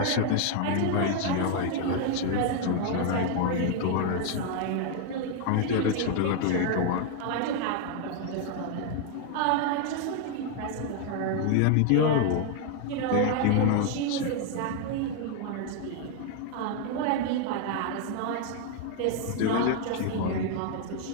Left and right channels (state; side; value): different; both; correlation 0.00